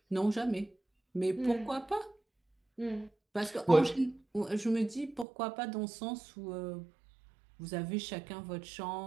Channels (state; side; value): drops out; left; at 5.2 s